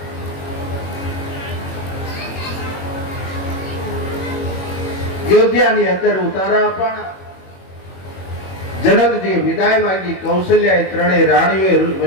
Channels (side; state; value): right; late; 21 ms